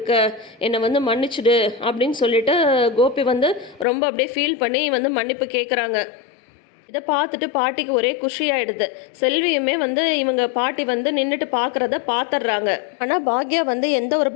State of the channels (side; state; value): right; drops out; at 3.9 s